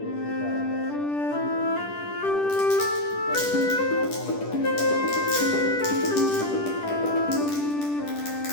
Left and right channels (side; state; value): right; late; 10 ms